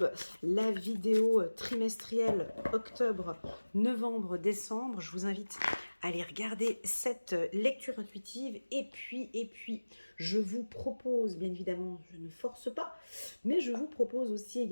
la vidéo trimestrielle octobre, novembre, décembre. Je vous invite à aller regarder cette lecture intuitive. Et puis, je vous propose, bien évidemment, je ne force pas, mais je vous propose aussi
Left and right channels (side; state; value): both; inverted; correlation -1.00